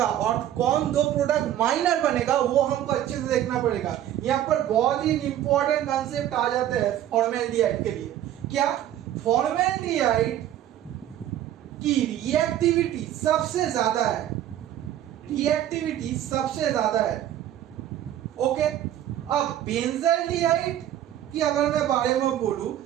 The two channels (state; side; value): quieter; left; 11.8 dB